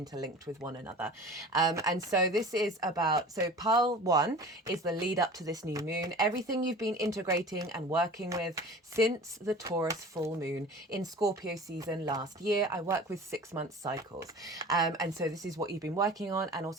with one another. And so this is about, so pile 1 is the lead up to this new moon. Everything you've been integrating and working with since the Taurus full moon in Scorpio season last year. I work with 6-month cycles. And so this is what you've been working on. And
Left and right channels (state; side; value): normal; both; correlation 0.40